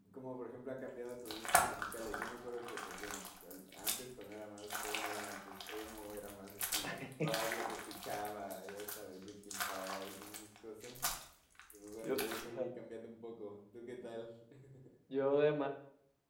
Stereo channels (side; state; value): both; identical; correlation 1.00